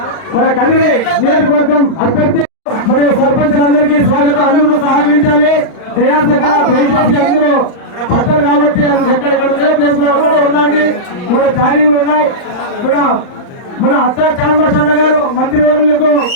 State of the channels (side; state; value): right; late; 39 ms